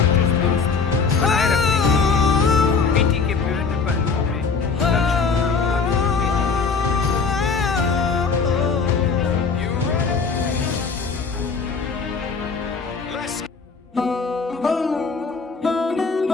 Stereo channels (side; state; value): right; quieter; 5.0 dB